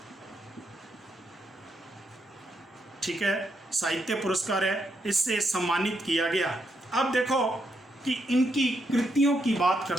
ठीक है, साहित्य पुरस्कार है, इससे सम्मानित किया गया। अब देखो कि इनकी कृतियों की बात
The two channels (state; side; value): normal; both; correlation 0.79